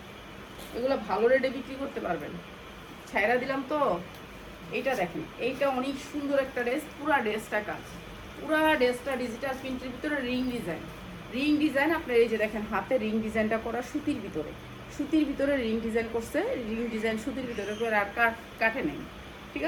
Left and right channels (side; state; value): both; identical; correlation 1.00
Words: এগুলো ভালো রেটে বিক্রি করতে পারবেন। ছাইরা দিলাম তো। এইটা দেখেন, এইটা অনেক সুন্দর একটা ড্রেস, পুরা ড্রেসটা কাজ, পুরা ড্রেসটা ডিজিটাল প্রিন্টের ভিতরে রিং ডিজাইন আপনার এই যে দেখেন হাতে রিং ডিজাইনটা করা, সুতির ভিতরে রিং ডিজাইন করছে, রিং ডিজাইন সুতির ভিতরে করে আর কাটে নেই, ঠিক